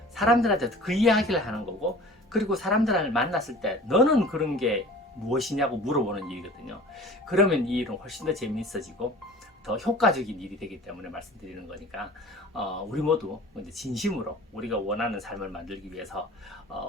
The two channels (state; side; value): normal; both; correlation 0.43